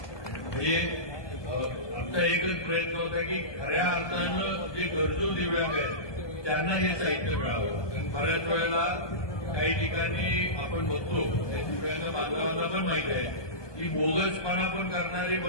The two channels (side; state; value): right; late; 1.2 ms